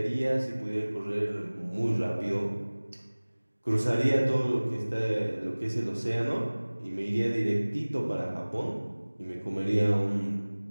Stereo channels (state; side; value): inverted; both; correlation -1.00